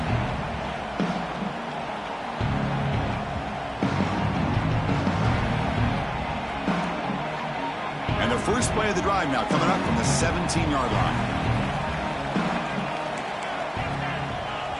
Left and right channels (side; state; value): both; identical; correlation 1.00